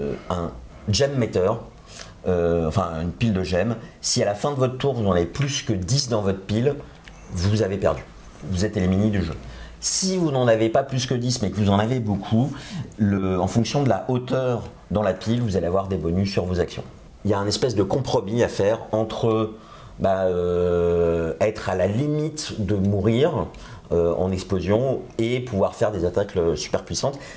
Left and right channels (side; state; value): both; identical; correlation 1.00